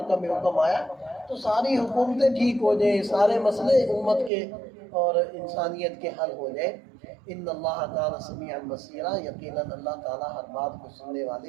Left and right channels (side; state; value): left; drops out; at 4.3 s